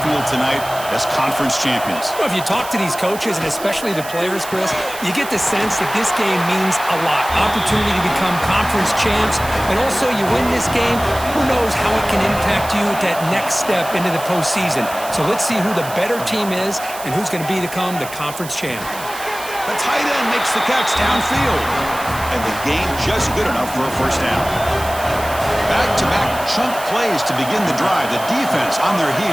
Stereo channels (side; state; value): right; noise; hiss, 13 dB below the sound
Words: tonight as conference champions. Well, if you talk to these coaches, and especially the players, Chris, you get the sense that this game means a lot. Opportunity to become conference champs, and also you win this game, who knows how it can impact you at that next step into the postseason. So let's see who the better team is and who's going to become the conference champ. The tight end makes the catch downfield. And the game just good enough for a first down. Back-to-back chunk plays to begin the drive. The defense on their